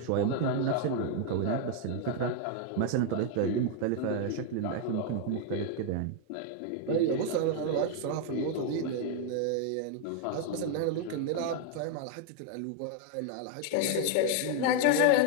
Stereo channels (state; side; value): different; both; correlation 0.00